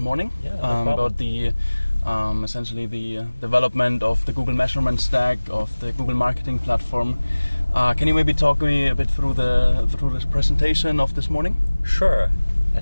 about the essentially the development of the Google measurement stack of the Google marketing platform. Can you maybe talk me a bit through this presentation of this morning? Sure. I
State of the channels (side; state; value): both; inverted; correlation -1.00